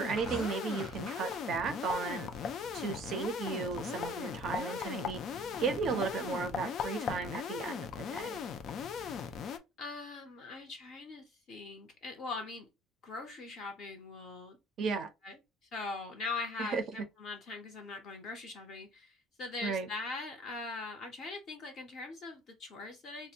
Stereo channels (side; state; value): both; normal; correlation 0.51